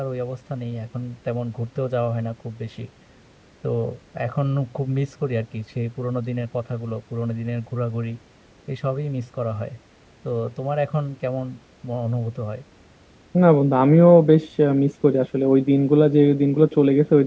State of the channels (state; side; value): identical; both; correlation 1.00